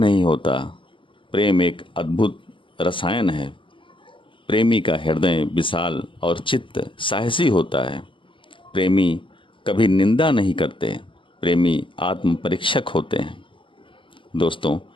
होता। प्रेम एक अद्भुत रसायन है। प्रेमी का हृदय विशाल और चित्त साहसी होता है। प्रेमी कभी निंदा नहीं करते। प्रेमी आत्म परीक्षक होते हैं। दोस्तों,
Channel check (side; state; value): right; late; 0.25 ms